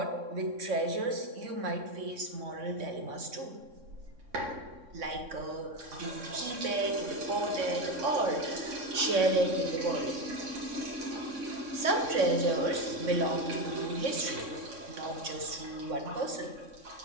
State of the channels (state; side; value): late; left; 3.6 ms